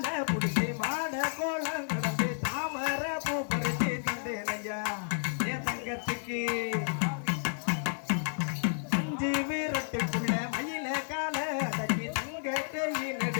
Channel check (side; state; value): right; silent; digital silence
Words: புடிச்சு மாட கோலம் கடந்து தாமர பூ பறிச்சு தந்தேனையா என் தங்கத்துக்கு 5 வீரட்டுக்குள்ள மயில கால அடக்கி தங்கத்தையும்